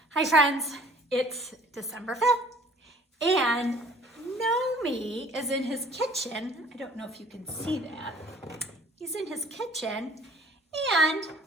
Hi friends, it's December 5th and Nomi is in his kitchen. I don't know if you can see that. He's in his kitchen and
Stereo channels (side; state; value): both; normal; correlation 0.53